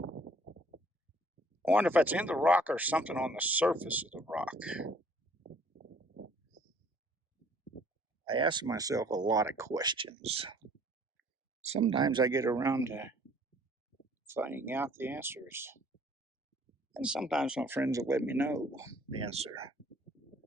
I wonder if that's in the rock or something on the surface of the rock. I ask myself a lot of questions. Sometimes I get around to finding out the answers. And sometimes my friends will let me know the answer.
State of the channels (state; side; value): normal; both; correlation 0.58